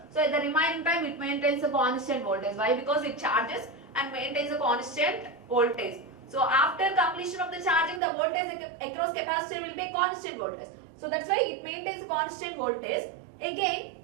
So at the remaining time it maintains a constant voltage. Why? Because it charges and maintains a constant voltage. So after completion of the charging, the voltage across capacitor will be a constant voltage. So that's why it maintains a constant voltage. Again,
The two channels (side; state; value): left; drops out; at 8.0 s